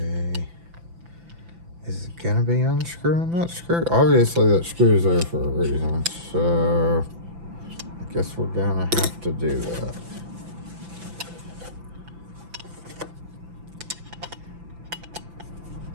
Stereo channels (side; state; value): left; late; 5.9 ms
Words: Is it gonna be unscrewing that screw? Obviously that screw's there for a reason, so I guess we're gonna have to do that.